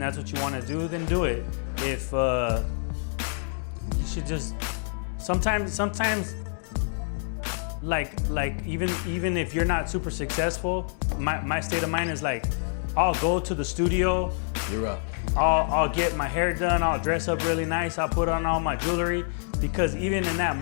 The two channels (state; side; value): silent; right; digital silence